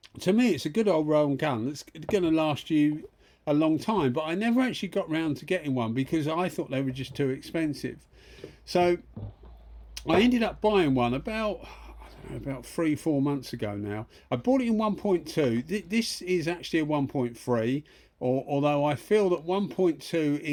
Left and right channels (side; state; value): both; identical; correlation 1.00